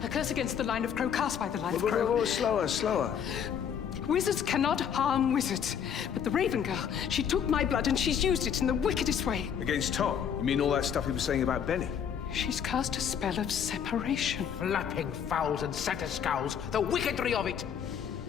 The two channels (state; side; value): quieter; right; 8.0 dB